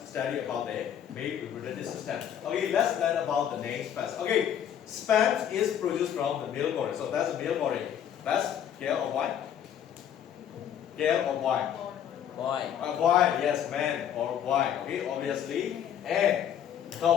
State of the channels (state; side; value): quieter; right; 9.5 dB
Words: study about the male reproductive system. Okay, let's learn about the names first. Okay, sperm is produced from the male body. So that's the male body. That's girl or boy? Girl or boy? Boy. Boy, yes, man or boy. Okay, obviously. And